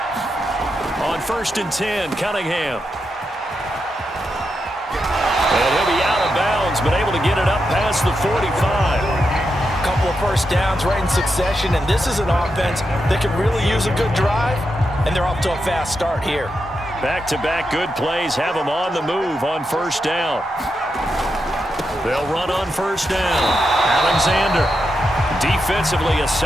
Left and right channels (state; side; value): normal; both; correlation 0.85